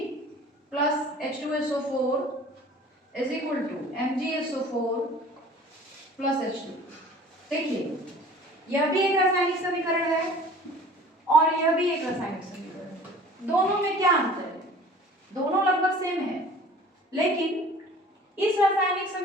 + H2SO4 = MgSO4 + H2। देखिए, यह भी एक रासायनिक समीकरण है और यह भी एक रासायनिक समीकरण है। दोनों में क्या अंतर है? दोनों लगभग सेम है, लेकिन इस रासायनिक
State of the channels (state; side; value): normal; both; correlation 0.46